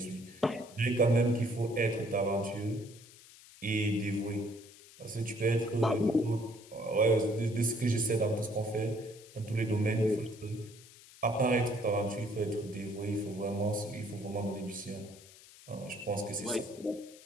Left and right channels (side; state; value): left; noise; hiss, 21 dB below the sound